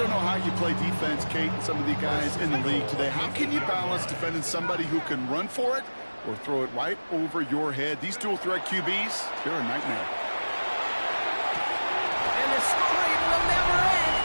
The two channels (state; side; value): inverted; both; correlation -1.00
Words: know how you play defense, Kate, and some of the guys in the league today. How can you balance defending somebody who can run for it or throw it right over your head? These dual-threat QBs, they're a nightmare. And the scoring will never